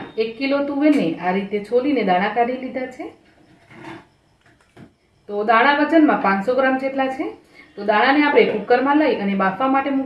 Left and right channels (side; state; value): both; identical; correlation 1.00